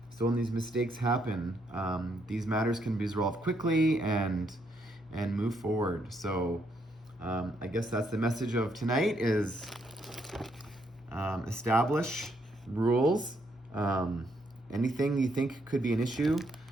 So when these mistakes happen, these matters can be resolved quickly and move forward. So I guess that's the message of tonight is establish rules. Anything you think could be an issue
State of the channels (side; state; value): both; normal; correlation 0.74